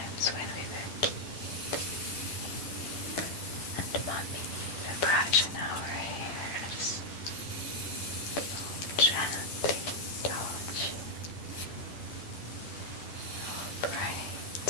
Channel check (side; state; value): right; late; 10 ms